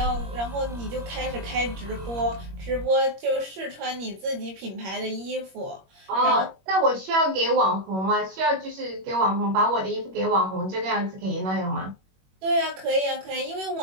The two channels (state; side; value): late; left; 21 ms